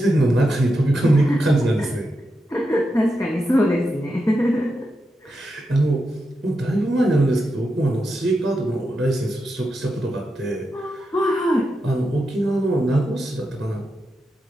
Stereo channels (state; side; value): normal; both; correlation 0.87